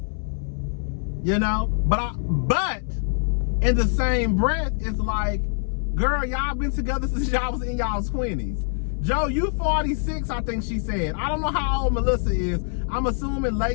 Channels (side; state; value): right; silent; 60 dB below the other